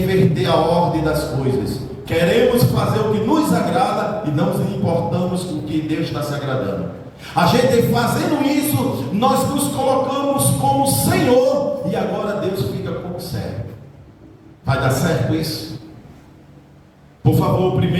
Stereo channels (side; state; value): both; identical; correlation 1.00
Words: inverter a ordem das coisas. Queremos fazer o que nos agrada e não nos importamos com o que Deus está se agradando. A gente fazendo isso, nós nos colocamos como Senhor, e agora Deus fica como servo. Vai dar certo isso? Por favor, o